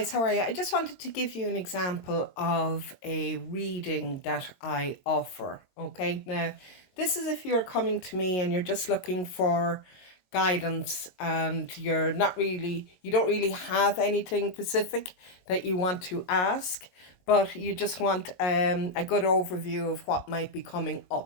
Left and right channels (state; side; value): late; right; 22 ms